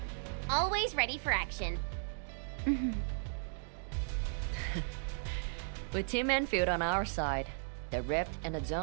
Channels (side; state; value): left; silent; digital silence